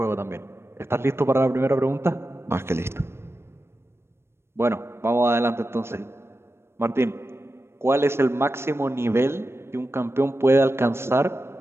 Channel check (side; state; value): left; late; 0.12 ms